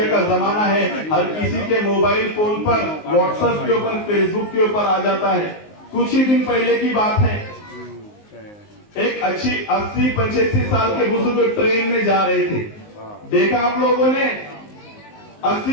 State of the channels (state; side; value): late; right; 19 ms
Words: का जमाना है, हर किसी के मोबाइल फोन पर व्हाट्सएप के ऊपर फेसबुक के ऊपर आ जाता है। कुछ ही दिन पहले की बात है, एक 80-85 साल के बुजुर्ग ट्रेन में जा रहे थे। देखा आप लोगों ने